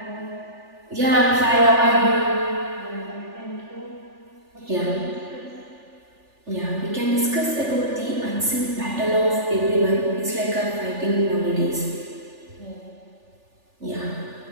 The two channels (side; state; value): left; late; 3.4 ms